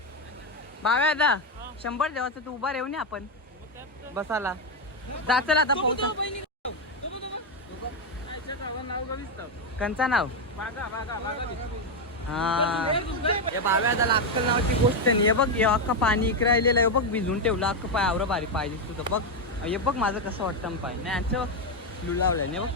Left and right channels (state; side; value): normal; both; correlation 0.05